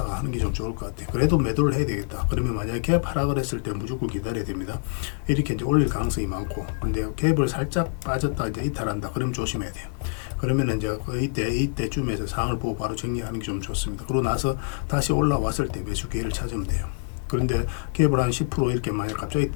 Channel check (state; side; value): silent; right; digital silence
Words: 하는 게 좀 좋을 것 같아요. 그래도 매도를 해야 되겠다. 그러면 만약에 갭 하락을 했을 때 무조건 기다려야 됩니다. 이렇게 이제 올릴 가능성이 많고, 근데 갭을 살짝 빠졌다 이제 이탈한다. 그러면 조심해야 돼요. 그러면 이제 이때쯤에서 상황을 보고 바로 정리하는 게 좀 좋습니다. 그러고 나서 다시 올라왔을 때 매수 기회를 찾으면 돼요. 그런데 갭을 한 10% 이렇게 만약 갑자기